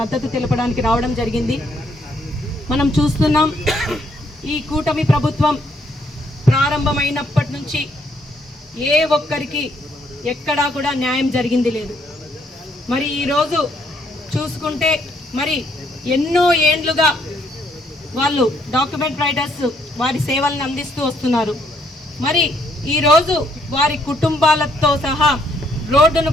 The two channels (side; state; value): both; normal; correlation 0.70